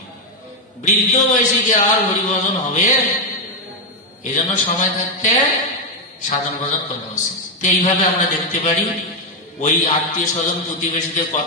বৃদ্ধ বয়সে কি আর হরিভজন হবে? এই জন্য সময় থাকতে সাধন ভজন করা উচিত। তো এইভাবে আমরা দেখতে পারি ওই আত্মীয় স্বজন প্রতিবেশীদের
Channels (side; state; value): both; normal; correlation 0.05